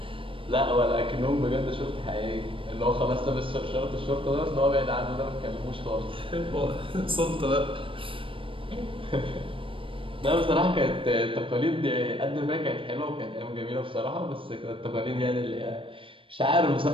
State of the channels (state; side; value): late; left; 0.25 ms